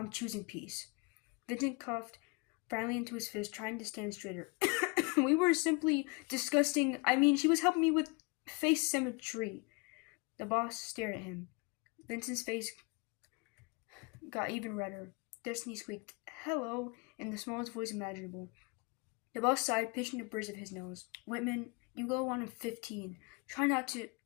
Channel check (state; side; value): quieter; right; 28.4 dB